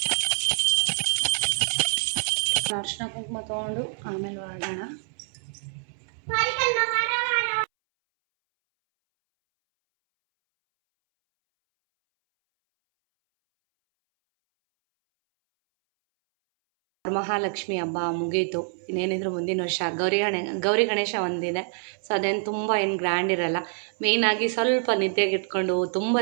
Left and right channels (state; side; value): silent; left; 61 dB below the other